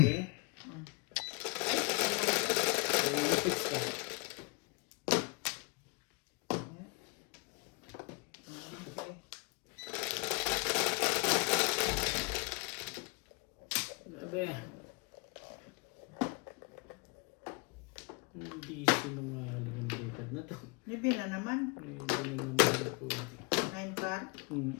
So, fix ka. Okay. Grabe. Hindi sinungaling ang dekad na to. Maybe na naman. Hindi na naman ako. 9 car.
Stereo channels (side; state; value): right; quieter; 29.9 dB